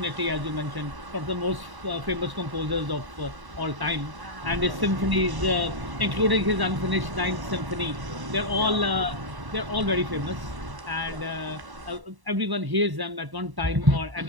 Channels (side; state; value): left; late; 1.0 ms